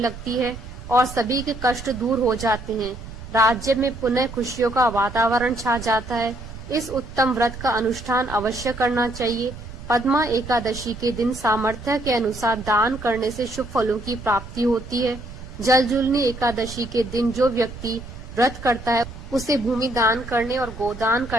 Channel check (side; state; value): right; noise; rumble, 12 dB below the sound